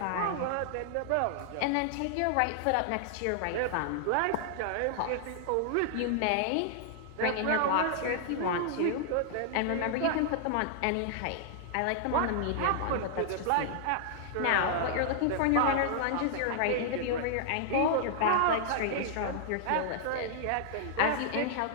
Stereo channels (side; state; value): both; different; correlation -0.01